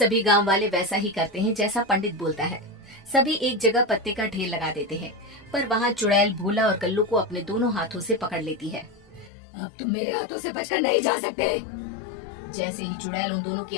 गांव वाले वैसा ही करते हैं जैसा पंडित बोलता है। सभी एक जगह पत्ते का ढेर लगा देते हैं, पर वहाँ चुड़ैल भोला और कल्लू को अपने दोनों हाथों से पकड़ लेती है। अब तुम मेरे हाथों से बचकर नहीं जा सकते। जैसे ही चुड़ैल उन दोनों की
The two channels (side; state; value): right; drops out; at 9.3 s